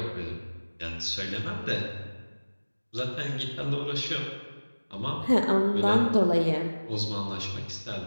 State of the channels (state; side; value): inverted; both; correlation -1.00